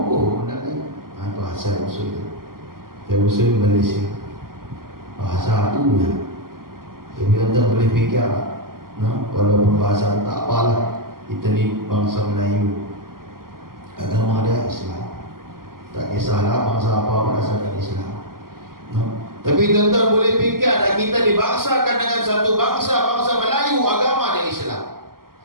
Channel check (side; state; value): left; late; 0.92 ms